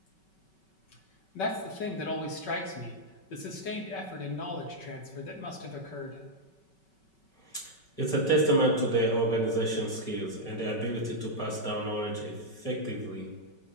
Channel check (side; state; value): right; late; 5.3 ms